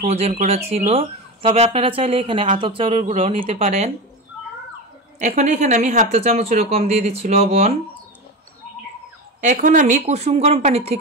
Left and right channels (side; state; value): both; normal; correlation 0.22